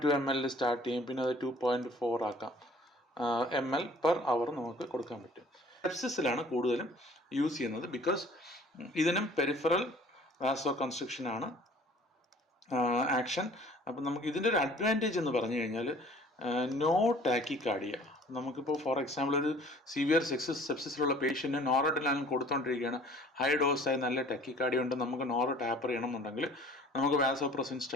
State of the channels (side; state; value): both; normal; correlation 0.51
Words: ml സ്റ്റാർട്ട് ചെയ്യും. പിന്നെ അത് 2.4 ആക്കാം. ml പെർ അവർ നമുക്ക് കൊടുക്കാൻ പറ്റും. സെപ്സിസിലാണ് കൂടുതലും യൂസ് ചെയ്യുന്നത്. ബിക്കോസ് ഇതിനും പെരിഫറൽ വാസോ കൺസ്ട്രിക്ഷൻ ആണ് ആക്ഷൻ. അപ്പം നമുക്ക് ഇതിൻ്റെ ഒരു അഡ്വാൻറ്റേജ് എന്ന് പറഞ്ഞു കഴിഞ്ഞാൽ നോ ടാക്കിക്കാർഡിയ. നമുക്കിപ്പോൾ ഫോർ എക്സാമ്പിൾ ഒരു സിവിയർ സെപ്സിസിലുള്ള പേഷ്യൻറ്റ് നോറഡ്രിനാലിൻ കൊടുത്തുകൊണ്ടിരിക്കുകയാണ്, ഹൈ ഡോസായി നല്ല ടാക്കിക്കാർഡിയ ഉണ്ട്, നമുക്ക് ടാപ്പർ ചെയ്യണമെന്നുണ്ടെങ്കിൽ നമുക്ക് വാസോപ്രസിൻ